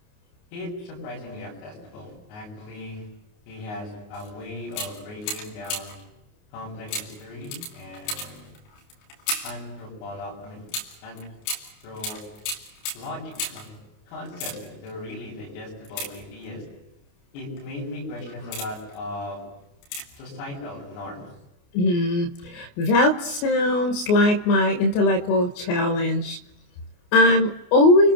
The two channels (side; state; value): right; late; 29 ms